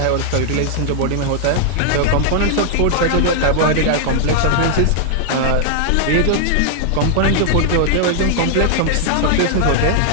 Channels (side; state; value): both; different; correlation 0.00